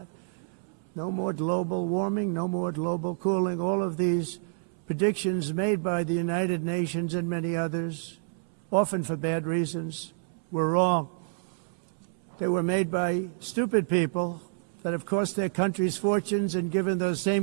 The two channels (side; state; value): left; silent; 59 dB below the other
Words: No more global warming, no more global cooling. All of these predictions made by the United Nations and many others, often for bad reasons, were wrong. They were made by stupid people that have cost their countries fortunes and given those